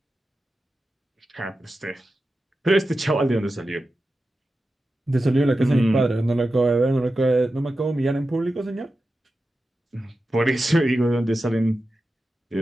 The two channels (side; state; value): both; normal; correlation 0.92